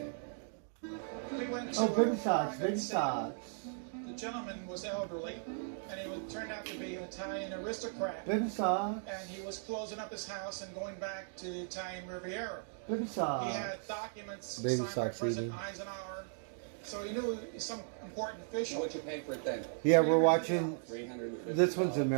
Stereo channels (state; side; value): silent; left; digital silence